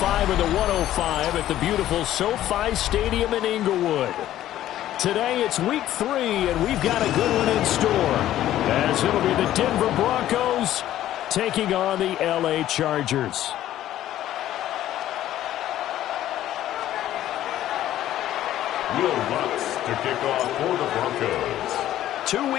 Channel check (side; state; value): right; quieter; 13.0 dB